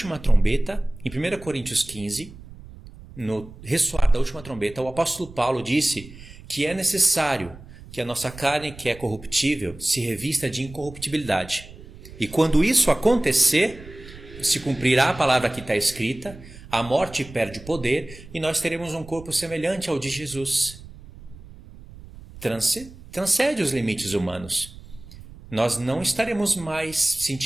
trombeta, em 1 Coríntios 15, no ressoar da última trombeta, o apóstolo Paulo disse que é necessário que a nossa carne, que é corruptível, se revista de incorruptibilidade. E quando isso acontecer, se cumprirá a palavra que está escrita, a morte perde o poder e nós teremos um corpo semelhante ao de Jesus. Transcende os limites humanos. Nós não estaremos mais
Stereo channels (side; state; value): right; noise; rumble, 18 dB below the sound